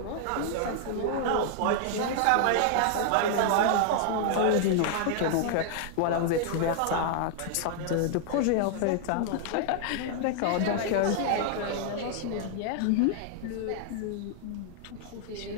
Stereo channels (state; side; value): different; both; correlation -0.01